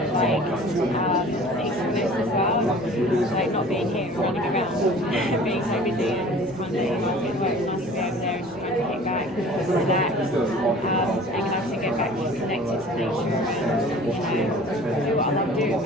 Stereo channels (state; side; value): normal; both; correlation 0.46